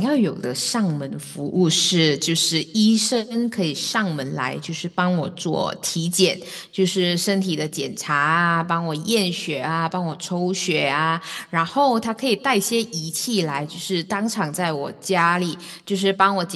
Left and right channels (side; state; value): both; identical; correlation 1.00